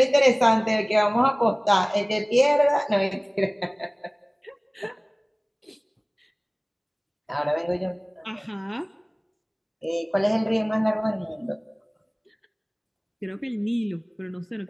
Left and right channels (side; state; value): both; identical; correlation 1.00